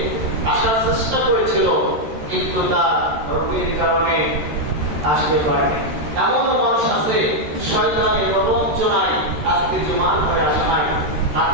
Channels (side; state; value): left; late; 13 ms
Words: আসার চেষ্টা করেছিল কিন্তু তার রোগের কারণে আসতে পারেনি। এমন মানুষ আছে শয়তানের প্রবঞ্চনায় আজকে জুমার করে আসা নাই,